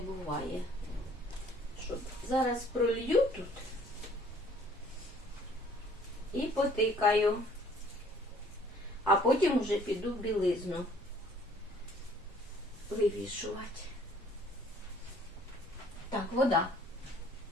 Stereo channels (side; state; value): both; normal; correlation 0.57